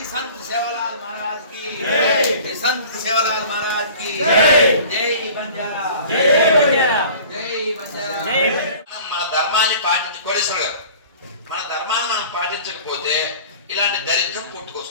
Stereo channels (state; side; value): inverted; both; correlation -0.45